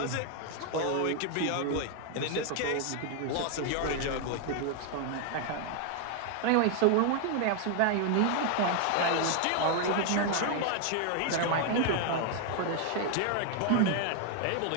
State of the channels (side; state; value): both; different; correlation 0.00